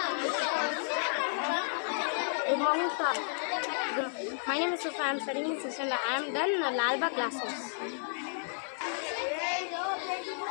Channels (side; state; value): right; silent; 56 dB below the other